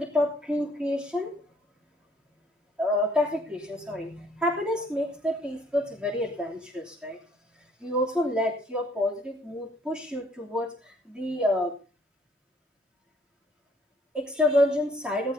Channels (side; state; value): both; normal; correlation 0.63